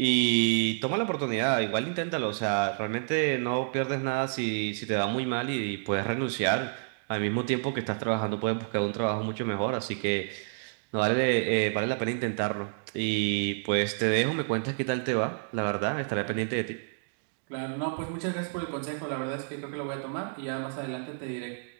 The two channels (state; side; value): silent; left; digital silence